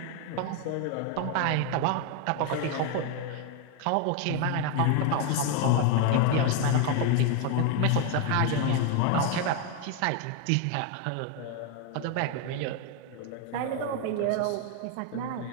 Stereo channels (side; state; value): both; different; correlation 0.01